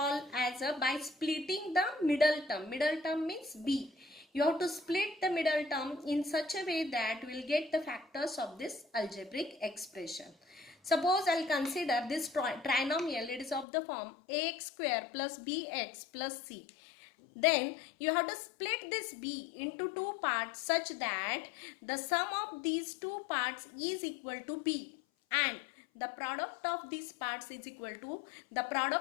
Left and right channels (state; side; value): drops out; right; at 13.7 s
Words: as a by splitting the middle term. Middle term means b. You have to split the middle term in such a way that we will get the factors of this algebraic expression. Suppose I will consider this trinomial, it is of the form ax square plus bx plus c. Then you have to split this b into two parts such that the sum of these two parts is equal to b and the product of these parts is equal to the